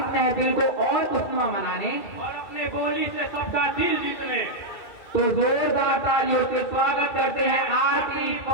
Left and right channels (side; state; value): right; late; 2.4 ms